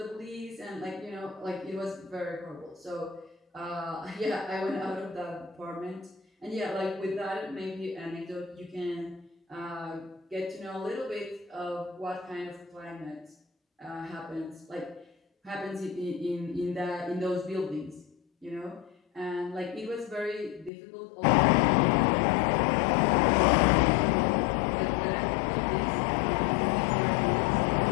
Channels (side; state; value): right; drops out; at 20.7 s